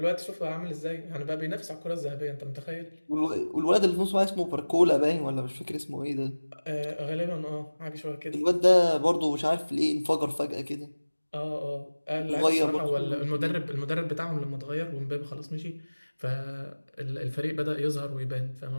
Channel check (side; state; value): both; inverted; correlation -1.00